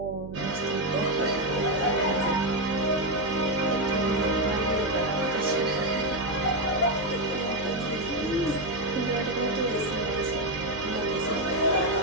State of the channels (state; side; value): noise; right; hum, 12 dB below the sound